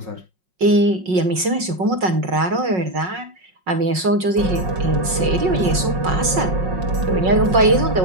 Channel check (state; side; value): late; left; 5.5 ms